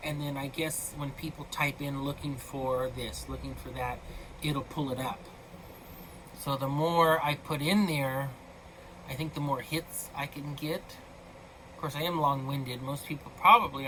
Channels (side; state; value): both; identical; correlation 1.00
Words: and then I guess when people type in looking for this, looking for that, it'll pull it up. So the more I put in there, I think the more hits I can get. Of course, I am long-winded. Most people probably